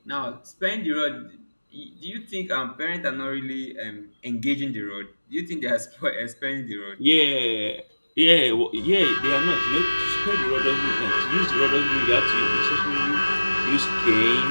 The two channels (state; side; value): inverted; both; correlation -1.00